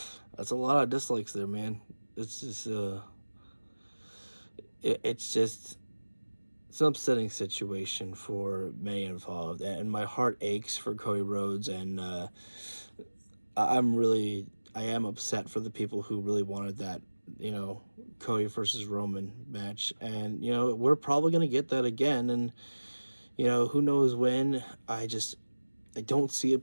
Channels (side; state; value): both; inverted; correlation -1.00